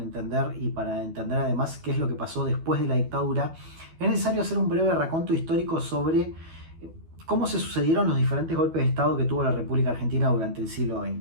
y para entender además qué es lo que pasó después de la dictadura, es necesario hacer un breve raconto histórico sobre cómo se sucedieron los diferentes golpes de Estado que tuvo la República Argentina durante el siglo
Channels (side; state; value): left; late; 12 ms